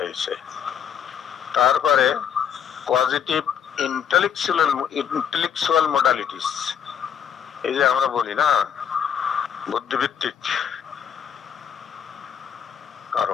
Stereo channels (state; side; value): quieter; right; 8.5 dB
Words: তারপরে পজিটিভ ইন্টেলেকচুয়াল মোডালিটিস, এই যে আমরা বলি না বুদ্ধিভিত্তিক